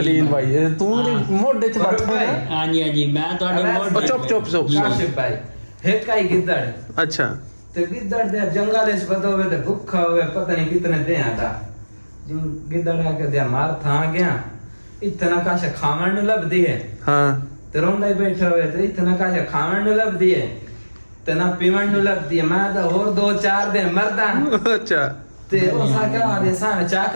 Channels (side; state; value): both; inverted; correlation -1.00